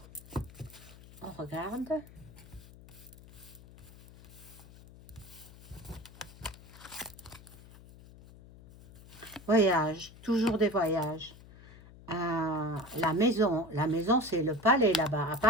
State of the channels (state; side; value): noise; left; hum, 20 dB below the sound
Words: on regarde. Voyage, toujours des voyages. La maison c'est le palais là-bas, à